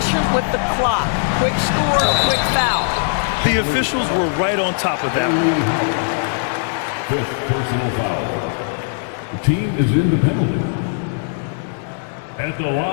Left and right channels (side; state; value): right; silent; 66 dB below the other